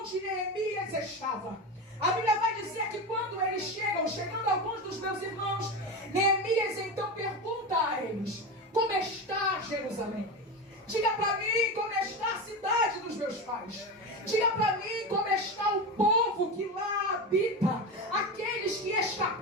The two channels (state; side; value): normal; both; correlation 0.21